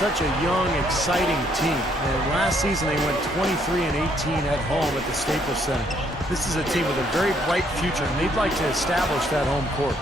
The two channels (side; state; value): both; normal; correlation 0.69